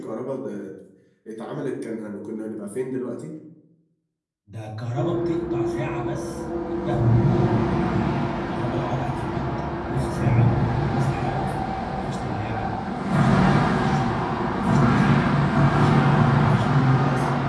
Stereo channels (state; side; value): identical; both; correlation 1.00